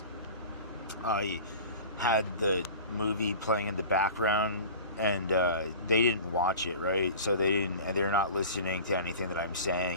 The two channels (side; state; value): both; inverted; correlation -0.38